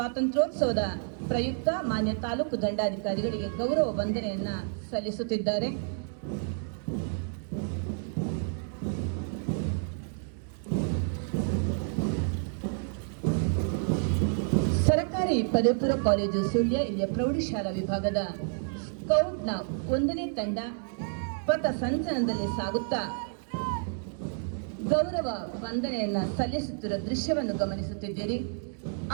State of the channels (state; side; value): silent; left; 57 dB below the other